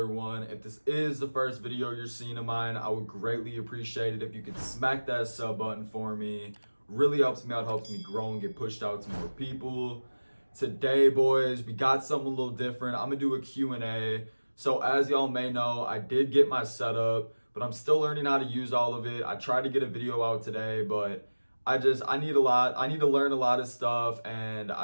one. If this is the first video you're seeing of mine, I would greatly appreciate it if you could smack that sub button for me. Really helps me out, helps me grow and get pushed out to more people. Today, boys, we got something a little different. I'm gonna do a Q&A. So as y'all may know, I did get my setup, but I'm still learning how to use all of it. I tried to get a video out today, but I need to learn a lot of stuff, and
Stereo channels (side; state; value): both; inverted; correlation -1.00